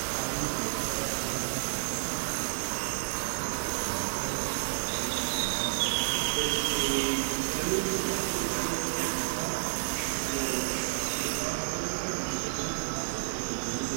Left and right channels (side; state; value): left; silent; 55 dB below the other